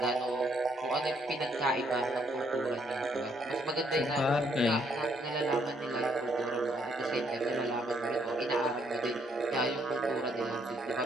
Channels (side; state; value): both; normal; correlation 0.70